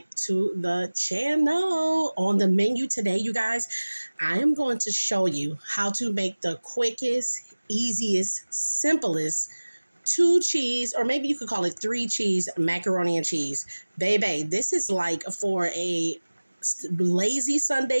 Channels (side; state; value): both; inverted; correlation -1.00